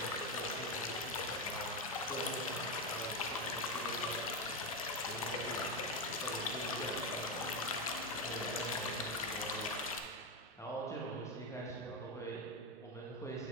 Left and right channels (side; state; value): both; normal; correlation 0.12